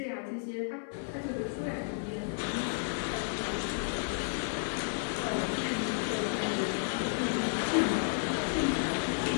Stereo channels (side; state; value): right; silent; 56 dB below the other